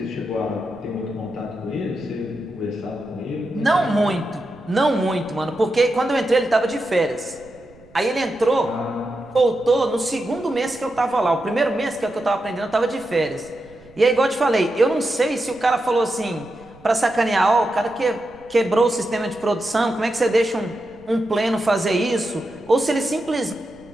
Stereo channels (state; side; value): noise; right; rumble, 26 dB below the sound